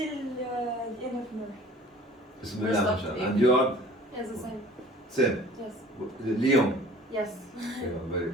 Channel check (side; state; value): both; normal; correlation 0.47